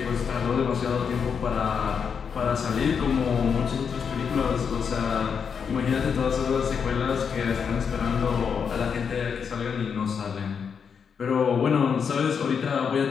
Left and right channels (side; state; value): right; quieter; 6.6 dB